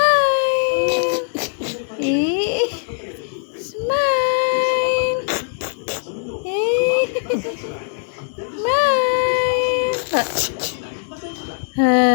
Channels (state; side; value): silent; right; digital silence